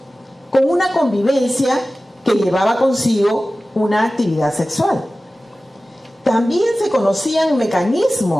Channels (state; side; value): normal; both; correlation 0.96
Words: con una convivencia que llevaba consigo una actividad sexual. También se conocían